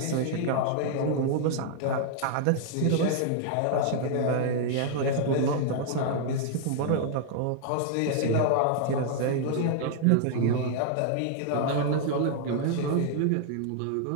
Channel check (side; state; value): both; different; correlation -0.01